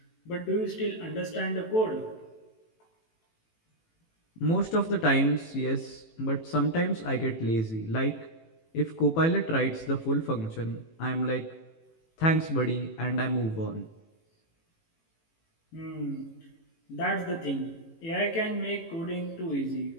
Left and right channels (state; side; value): late; right; 18 ms